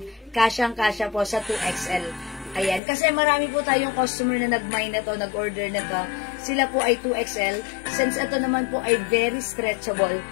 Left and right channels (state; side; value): drops out; right; at 2.8 s